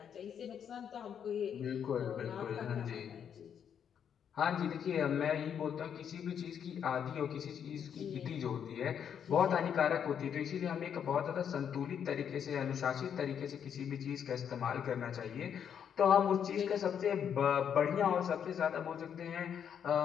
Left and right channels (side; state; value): right; quieter; 8.2 dB